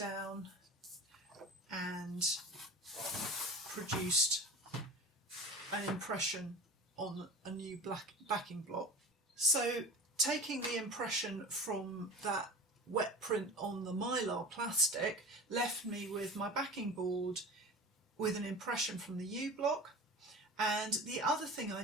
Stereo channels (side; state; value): both; normal; correlation 0.36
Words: and produced an impression on a new black backing block. So taking the impression from that wet print on the mylar plastic left me with my backing board with an impression from the yew block. And the other thing I